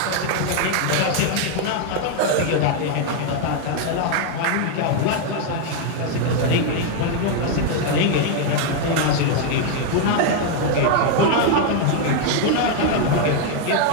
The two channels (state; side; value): different; both; correlation 0.00